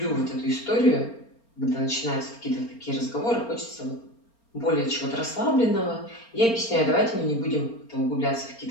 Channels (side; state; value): right; late; 4.3 ms